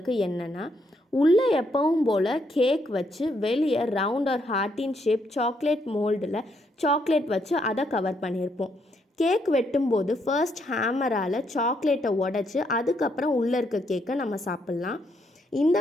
என்னென்னா, உள்ளே எப்பவும் போல் கேக் வச்சு வெளியே ரவுண்ட் ஆர் ஹார்ட்டின் ஷேப் சாக்லேட் மோல்டில் சாக்லேட் வச்சு அதை கவர் பண்ணியிருப்போம். கேக் வெட்டும்போது ஃபர்ஸ்ட் ஹேமரால் சாக்லேட்டை உடச்சி அதுக்கப்புறம் உள்ளே இருக்க கேக்கை நம்ம சாப்பிட்லாம். இந்த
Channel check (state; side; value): normal; both; correlation 0.75